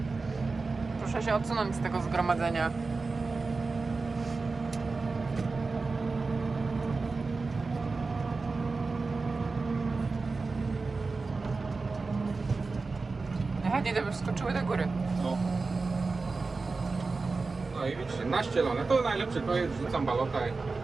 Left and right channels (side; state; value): left; quieter; 4.0 dB